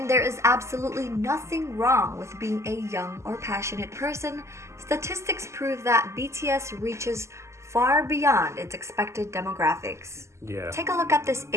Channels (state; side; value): late; left; 0.13 ms